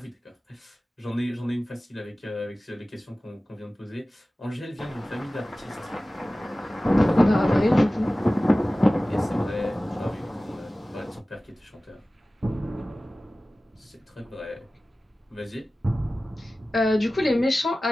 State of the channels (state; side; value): normal; both; correlation 0.97